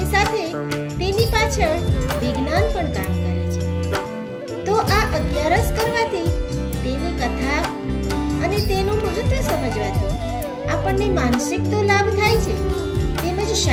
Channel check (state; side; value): identical; both; correlation 1.00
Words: સાથે તેની પાછળ વિજ્ઞાન પણ કામ કરે છે. તો આ અગિયારસ કરવાથી, તેની કથા અને તેનું મહત્વ સમજવાથી આપણને માનસિક તો લાભ થાય છે, તેમજ